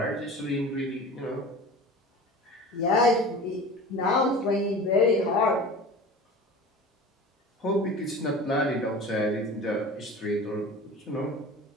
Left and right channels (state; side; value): normal; both; correlation 0.37